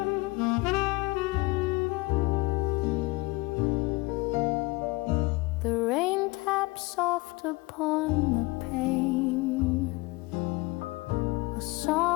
The rain taps soft upon the pane, a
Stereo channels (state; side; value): quieter; right; 23.5 dB